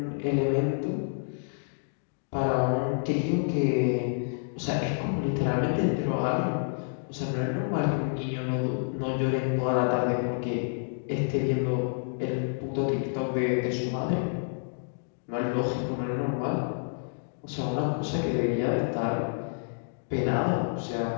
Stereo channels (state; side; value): silent; right; digital silence